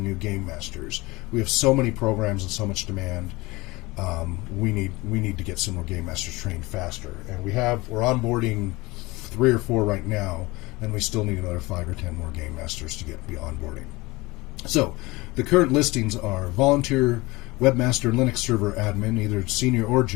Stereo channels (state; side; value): quieter; right; 22.3 dB